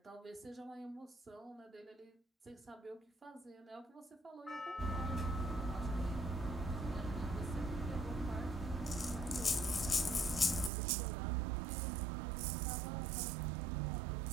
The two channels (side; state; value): left; drops out; at 10.7 s